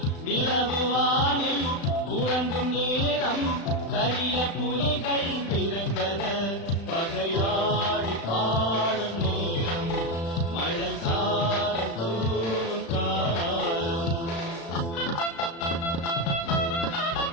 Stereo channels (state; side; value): late; right; 36 ms